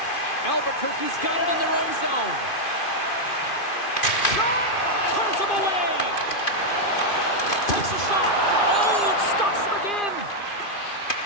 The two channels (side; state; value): right; late; 2.5 ms